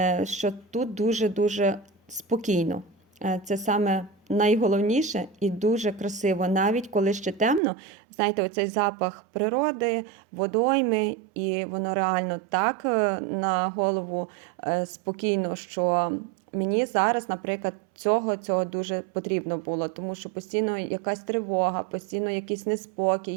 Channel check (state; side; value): drops out; left; at 7.6 s